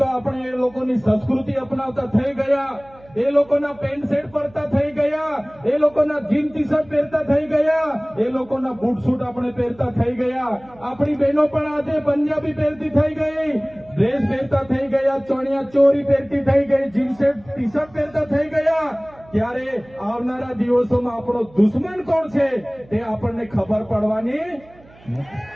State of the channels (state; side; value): noise; right; hum, 25 dB below the sound